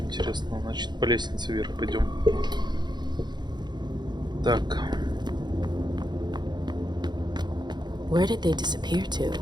интересного. Значит, по лестнице вверх пойдем. Так. Where did they disappear to?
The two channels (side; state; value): left; late; 0.21 ms